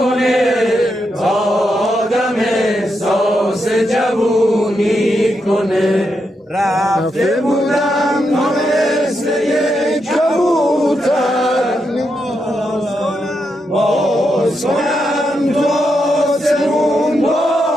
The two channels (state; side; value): normal; both; correlation 0.83